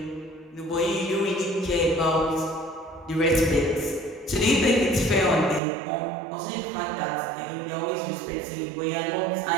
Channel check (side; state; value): left; drops out; at 5.6 s